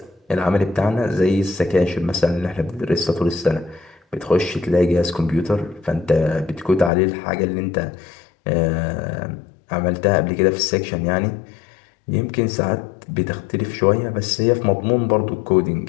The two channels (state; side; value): drops out; right; at 6.9 s